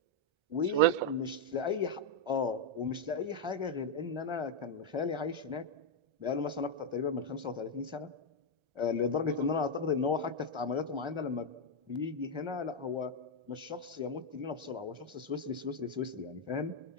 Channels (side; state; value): left; late; 1.3 ms